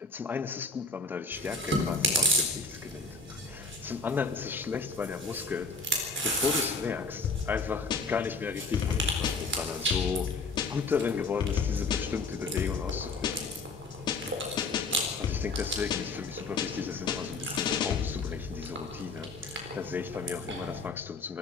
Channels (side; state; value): right; quieter; 3.7 dB